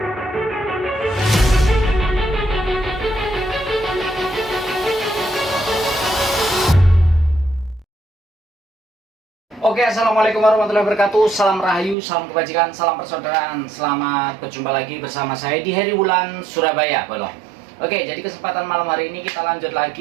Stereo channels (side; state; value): left; drops out; at 12.0 s